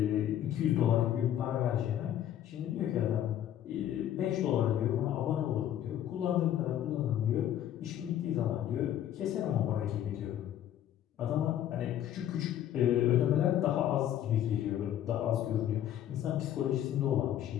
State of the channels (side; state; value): right; quieter; 11.3 dB